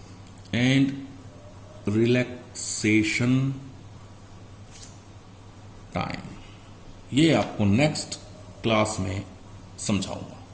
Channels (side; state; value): both; identical; correlation 1.00